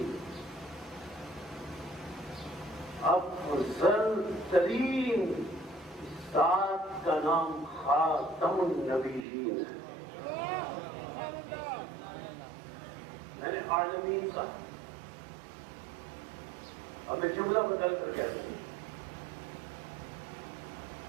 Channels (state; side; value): drops out; left; at 9.2 s